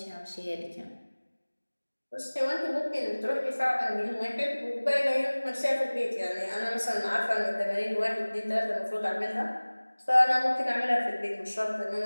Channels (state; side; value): inverted; both; correlation -1.00